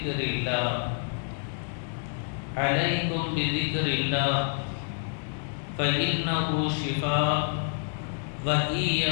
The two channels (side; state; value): right; silent; 59 dB below the other